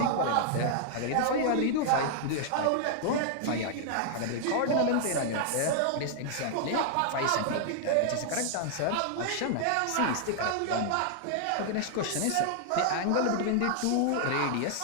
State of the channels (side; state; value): both; different; correlation -0.01